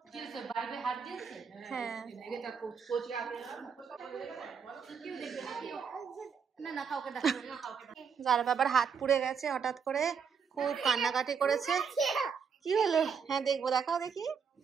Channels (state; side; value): quieter; left; 6.4 dB